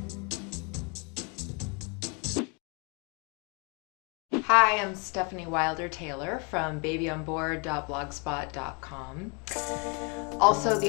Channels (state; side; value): quieter; right; 33.8 dB